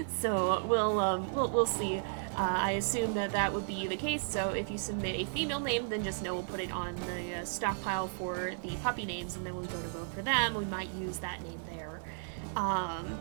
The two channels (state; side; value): silent; left; 55 dB below the other